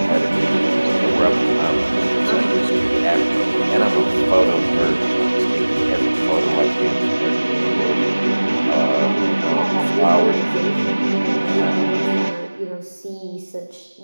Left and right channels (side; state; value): both; inverted; correlation -1.00